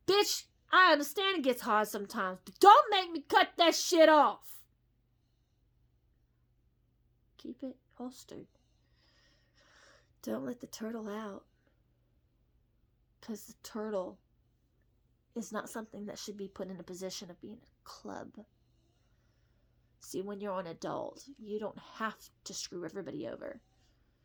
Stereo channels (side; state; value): both; identical; correlation 1.00